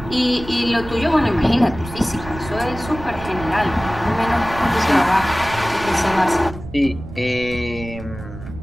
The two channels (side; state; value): right; noise; rumble, 13 dB below the sound